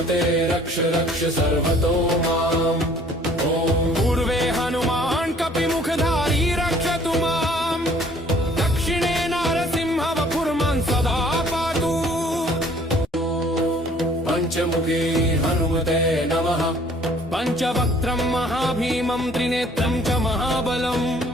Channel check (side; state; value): both; normal; correlation 0.56